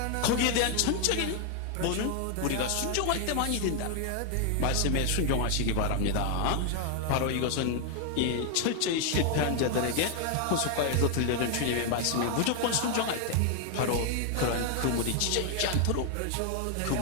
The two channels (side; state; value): both; different; correlation 0.00